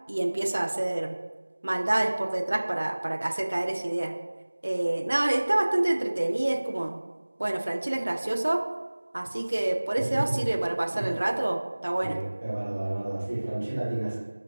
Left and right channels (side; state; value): both; inverted; correlation -1.00